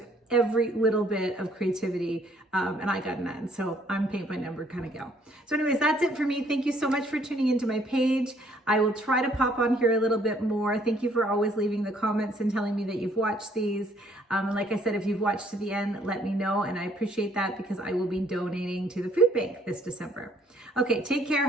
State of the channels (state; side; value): normal; both; correlation 0.64